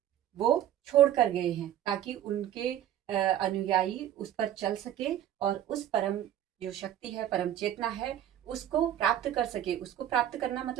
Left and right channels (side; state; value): left; quieter; 11.3 dB